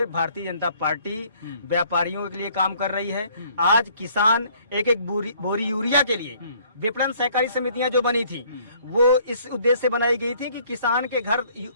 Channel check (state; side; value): inverted; both; correlation -0.60